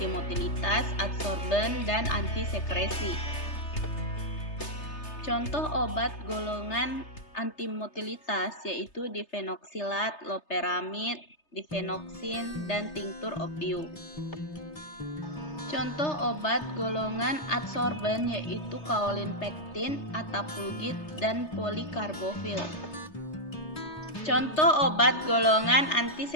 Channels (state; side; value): late; right; 3.3 ms